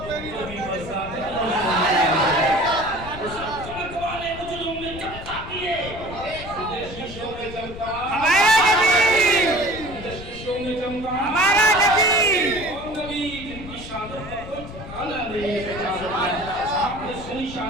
پہ بھی چمک والے مجلوں میں چمکا دیے, شیشوں میں چمکا ہمارا نبی, شیشوں میں چمکا ہمارا نبی, اور نبی جن کی شان پر ٹھکانا نہیں. آپ نے سنی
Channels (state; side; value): noise; left; rumble, 12 dB below the sound